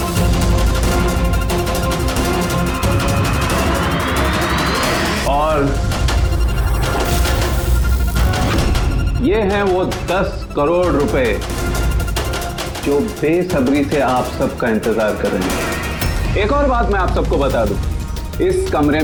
और ये हैं वो 10 करोड़ रुपए जो बेसब्री से आप सबका इंतजार कर रहे हैं। एक और बात मैं आप सबको बता दूं, इस कमरे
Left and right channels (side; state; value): both; identical; correlation 1.00